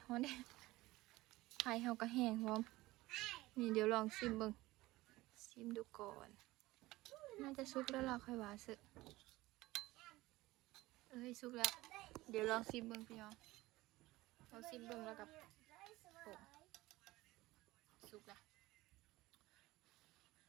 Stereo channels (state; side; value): quieter; left; 18.8 dB